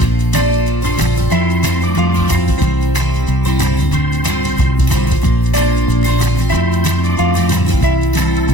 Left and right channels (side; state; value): right; late; 1.0 ms